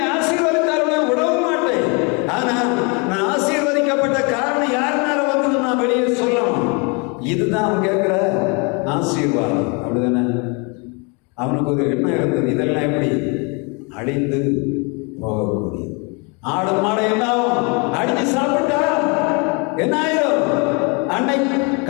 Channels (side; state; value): right; quieter; 32.4 dB